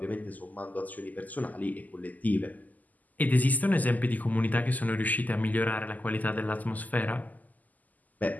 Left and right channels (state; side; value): late; right; 0.080 ms